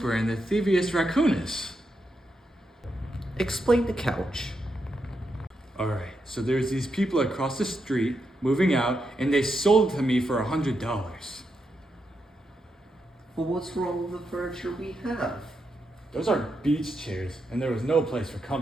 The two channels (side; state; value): both; normal; correlation 0.84